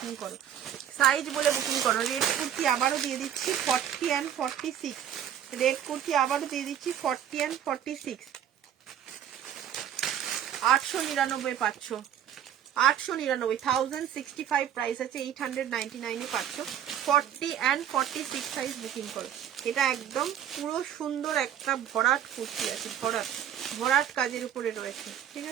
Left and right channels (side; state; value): left; quieter; 10.0 dB